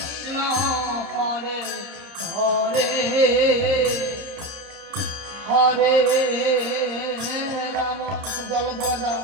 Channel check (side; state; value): left; late; 30 ms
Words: হরে হরে হরে রাম জল দাও